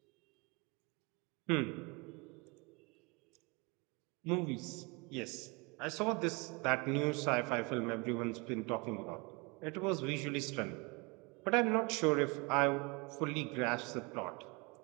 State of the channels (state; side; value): quieter; left; 28.8 dB